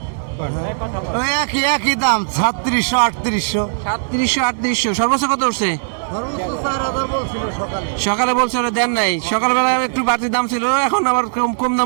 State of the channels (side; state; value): left; silent; digital silence